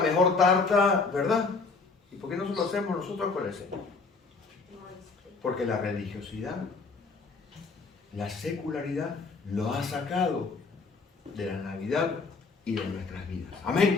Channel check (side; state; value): right; quieter; 4.3 dB